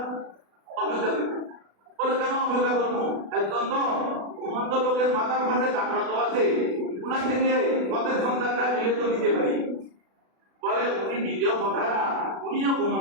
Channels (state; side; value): late; left; 36 ms